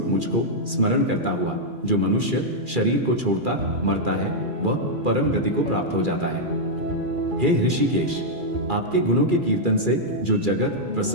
मुझको स्मरण करता हुआ जो मनुष्य शरीर को छोड़ता मरता है वह परम गति को प्राप्त हो जाता है। हे ऋषिकेश, आपके गुणों के कीर्तन से जो जगत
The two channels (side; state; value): left; late; 2.4 ms